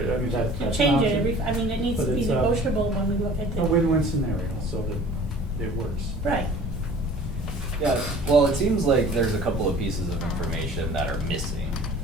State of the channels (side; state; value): both; normal; correlation 0.47